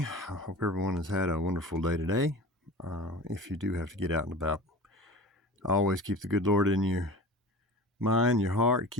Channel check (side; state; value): both; normal; correlation 0.36